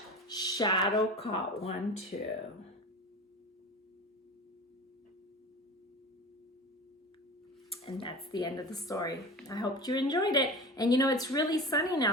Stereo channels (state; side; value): normal; both; correlation 0.32